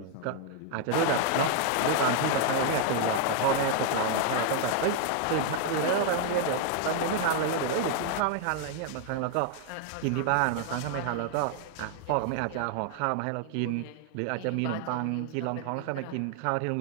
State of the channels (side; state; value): both; different; correlation 0.00